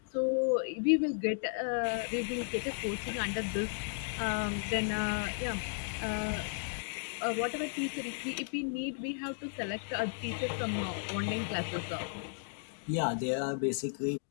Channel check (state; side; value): silent; right; digital silence